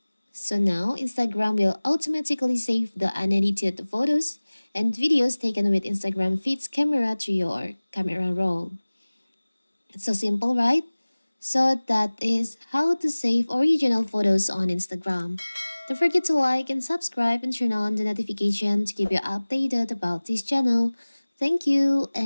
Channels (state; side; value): inverted; both; correlation -1.00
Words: So now Instagram will automatically save the unedited photos and videos taken with Instagram feed's camera to your camera roll. It's so simple, right? So that is how to save original photos on Instagram. Don't forget to like and subscribe and turn on the notification to keep you updated about this channel. Thank you